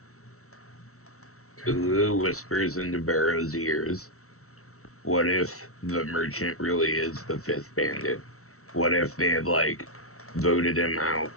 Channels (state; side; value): late; right; 0.64 ms